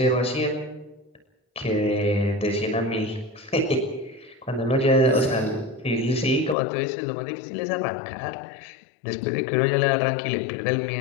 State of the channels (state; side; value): drops out; right; at 6.6 s